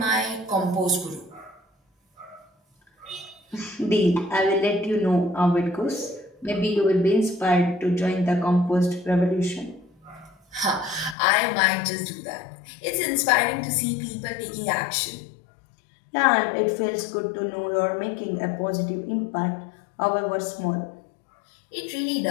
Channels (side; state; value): right; drops out; at 11.2 s